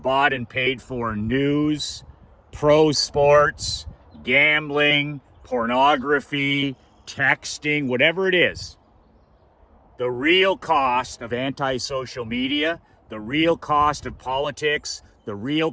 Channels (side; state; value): both; identical; correlation 1.00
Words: and paid for news, pro sports, gambling, pornography, texting, whatever it is. The real cost of anti-social media, the real cost of politics, the